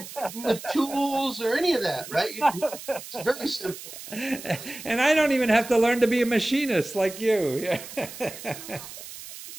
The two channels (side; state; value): right; noise; hiss, 13 dB below the sound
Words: tools or any of that, right? It's very simple. And I don't even have to learn to be a machinist like you.